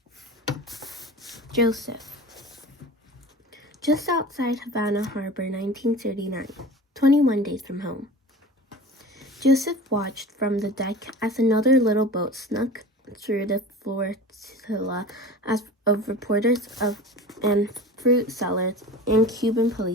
Joseph. Just outside Havana Harbor, 1939, 21 days from home. Joseph watched from the deck as another little boat snuck through the flotilla of reporters and fruit sellers and Cuban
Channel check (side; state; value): both; normal; correlation 0.36